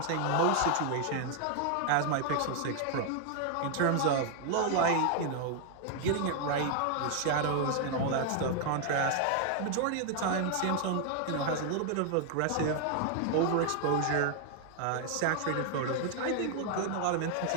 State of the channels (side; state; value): both; different; correlation 0.00